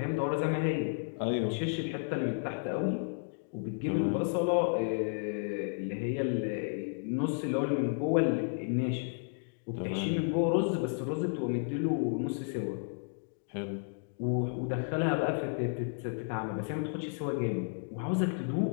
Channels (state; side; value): silent; right; digital silence